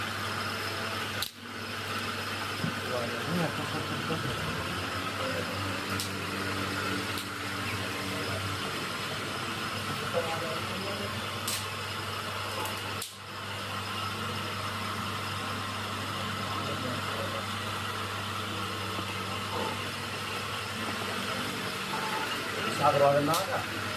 सागर वाले ना आया,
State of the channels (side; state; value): both; identical; correlation 1.00